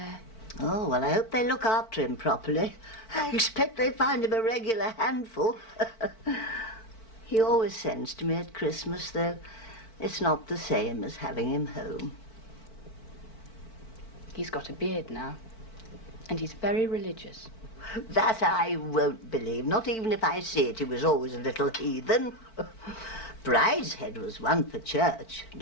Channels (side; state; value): right; late; 4.5 ms